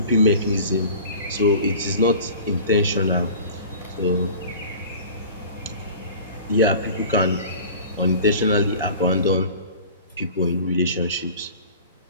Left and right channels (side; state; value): both; inverted; correlation -0.41